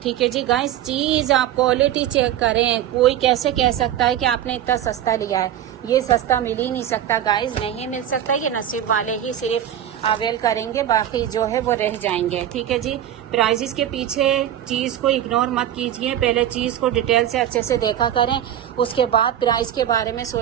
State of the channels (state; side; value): quieter; left; 11.1 dB